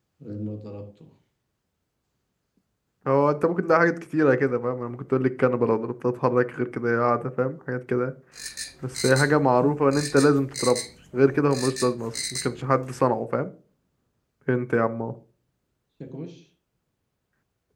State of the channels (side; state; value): both; identical; correlation 1.00